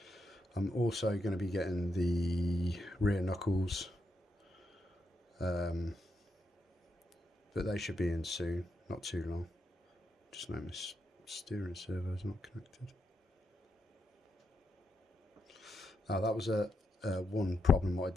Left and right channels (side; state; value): both; normal; correlation 0.82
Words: I'm also going to be getting the rear knuckles, but they should be in soon, not too long. Just know my steering servo is not connected. That was one problem what I